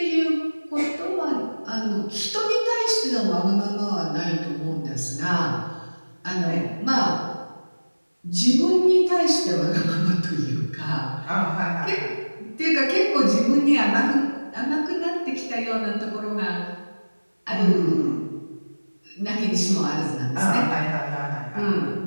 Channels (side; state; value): both; inverted; correlation -1.00